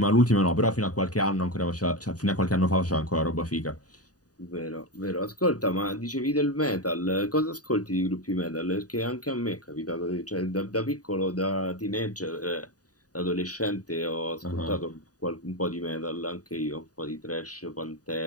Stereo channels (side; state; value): right; late; 0.68 ms